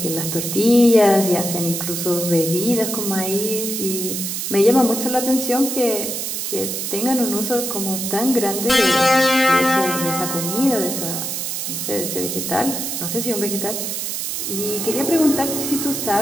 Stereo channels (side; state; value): right; noise; hiss, 3 dB below the sound